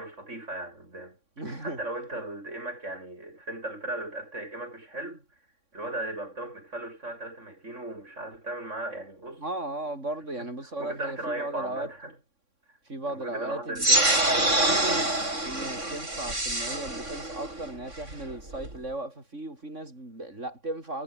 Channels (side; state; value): left; late; 3.6 ms